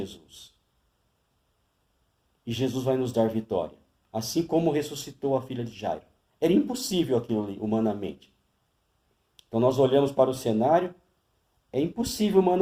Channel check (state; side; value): identical; both; correlation 1.00